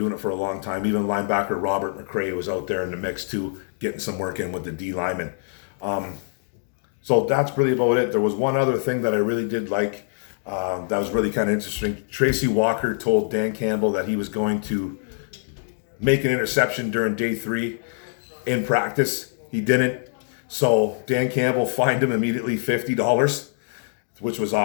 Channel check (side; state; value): right; silent; digital silence